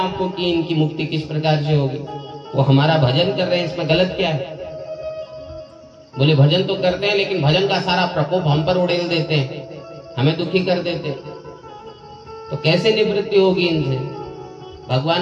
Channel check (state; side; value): identical; both; correlation 1.00